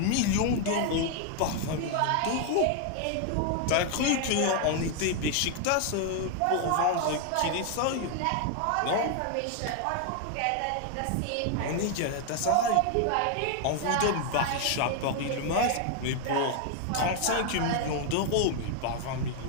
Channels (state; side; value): different; both; correlation 0.00